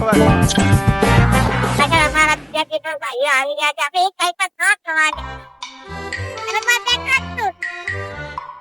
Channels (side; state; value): both; identical; correlation 1.00